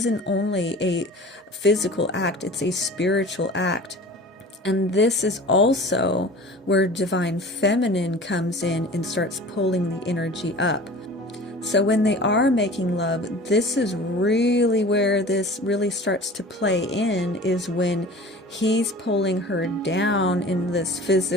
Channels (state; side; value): normal; both; correlation 0.41